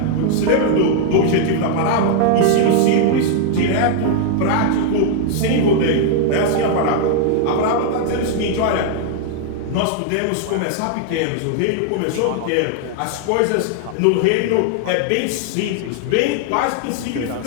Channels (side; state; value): both; different; correlation 0.00